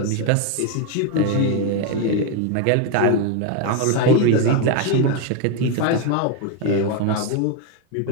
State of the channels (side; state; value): both; different; correlation 0.02